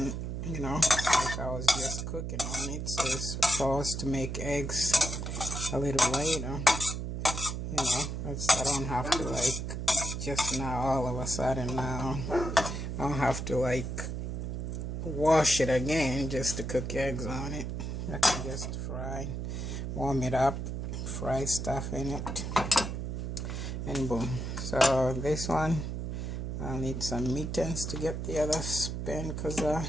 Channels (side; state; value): right; noise; hum, 4 dB below the sound